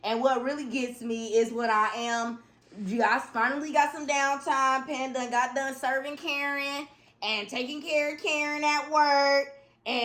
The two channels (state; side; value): identical; both; correlation 1.00